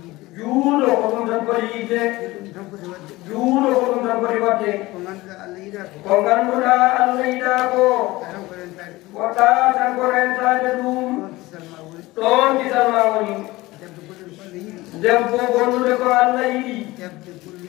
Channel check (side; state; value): right; quieter; 19.7 dB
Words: juulo ko ɗum tan foti yidde juulo ko ɗum tan foti wadde ko ngannduɗa Allah yiɗa ko woɗɗa tan ko rentade ɗum ɗon kisal ma woni debbo gonnude ko Allah yiɗi